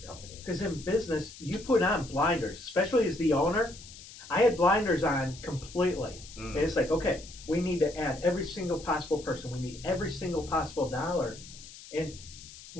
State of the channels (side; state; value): left; noise; hiss, 17 dB below the sound